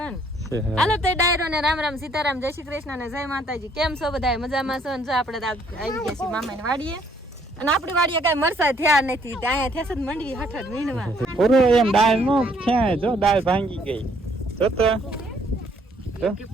ને હાલો તે ડાયરો ને રામ રામ સીતારામ જય શ્રી કૃષ્ણ ને જય માતાજી કેમ છો બધા મજામાં છો ને જો આપણે આવી ગયા છીએ મામાની વાડીએ અને આપણી વાડીએ કઈ મરસા થયા નથી ત્યાં થેસ જ મંડવી હટટ વીણવા પૂરો એમ દાળ નો ક્યાં જો દાળ ભાંગી ગઈ જો તો કે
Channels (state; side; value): normal; both; correlation 0.65